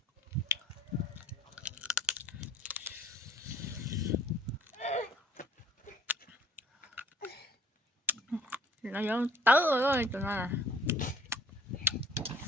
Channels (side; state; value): both; normal; correlation 0.55